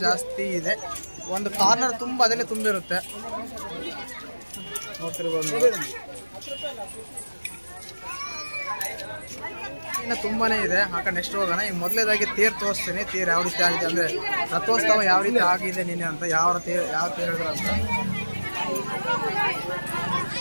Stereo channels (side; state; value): both; inverted; correlation -1.00